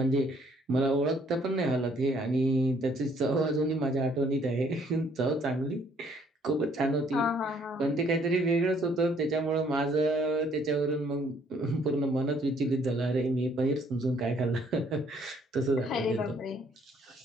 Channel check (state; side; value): normal; both; correlation 0.64